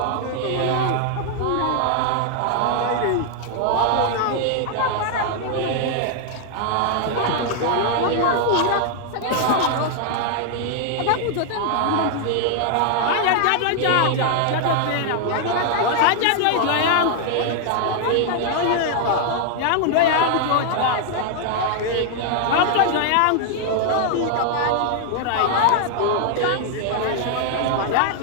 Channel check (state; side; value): different; both; correlation 0.00